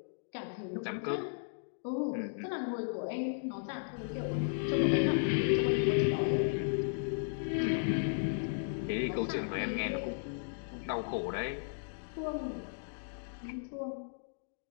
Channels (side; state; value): right; silent; digital silence